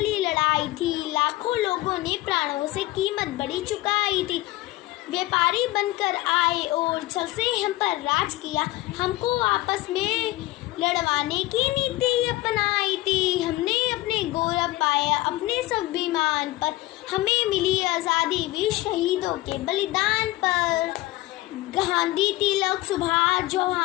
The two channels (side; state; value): right; quieter; 18.0 dB